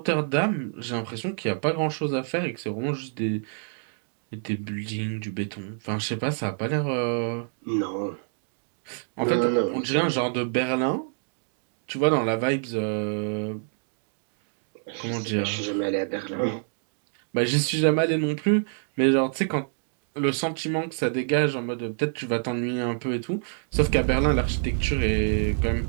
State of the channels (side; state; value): left; silent; digital silence